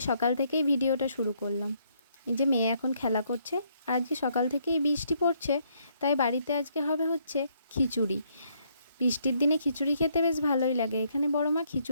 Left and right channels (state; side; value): inverted; both; correlation -0.71